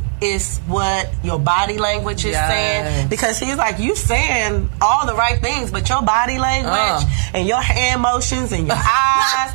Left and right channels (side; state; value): left; silent; digital silence